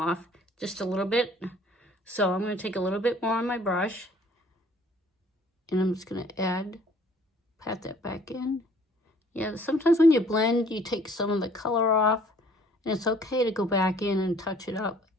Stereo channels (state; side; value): normal; both; correlation 0.57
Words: Just a little bit. So I'm going to take a little bit more on my brush. And I'm just going to pat that back in. Yeah, sometimes when you blend, you take some of the color off. And it's okay to go back in and touch it up